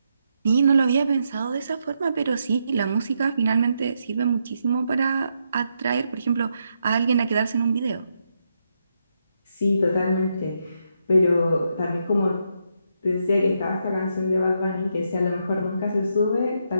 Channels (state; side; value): inverted; both; correlation -0.80